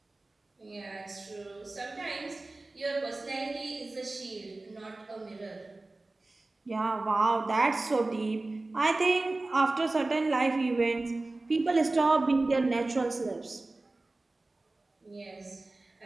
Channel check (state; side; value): quieter; left; 3.1 dB